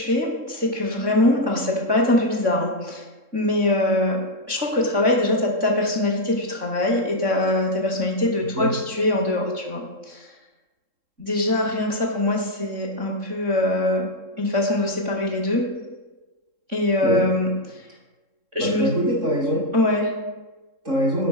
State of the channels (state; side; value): late; left; 3.6 ms